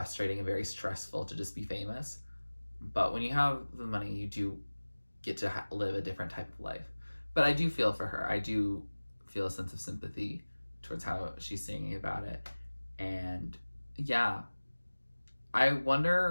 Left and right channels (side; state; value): both; inverted; correlation -1.00